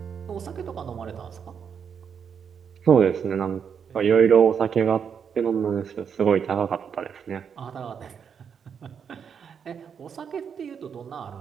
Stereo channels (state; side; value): quieter; left; 7.1 dB